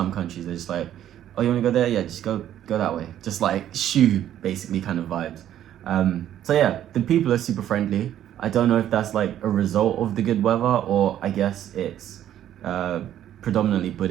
countries, they're just like, oh, you want to go there? Yeah, just go that way. Just like shoo, basically kind of vibes. So yeah, the people are super friendly. I don't know if that's like a result of the good weather, or I guess it's predominantly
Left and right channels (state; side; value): quieter; left; 11.4 dB